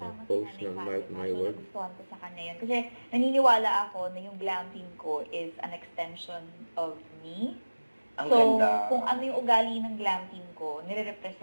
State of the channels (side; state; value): both; inverted; correlation -1.00